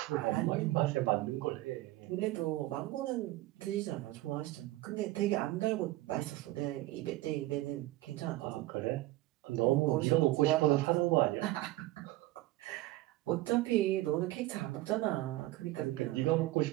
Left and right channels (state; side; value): quieter; left; 17.6 dB